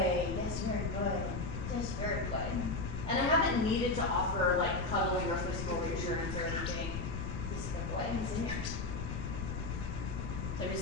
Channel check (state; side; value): noise; left; rumble, 4 dB below the sound